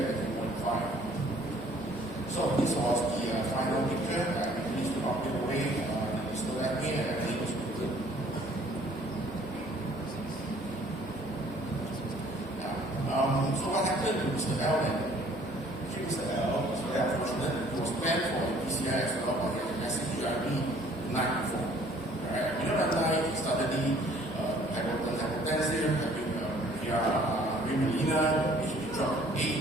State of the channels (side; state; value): both; normal; correlation 0.57